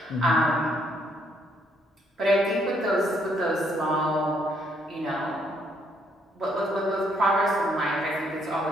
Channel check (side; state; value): both; normal; correlation 0.70